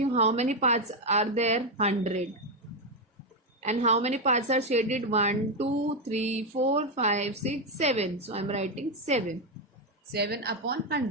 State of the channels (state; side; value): normal; both; correlation 0.06